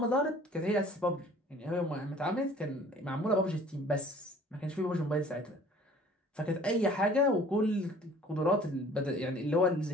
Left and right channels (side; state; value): both; normal; correlation 0.51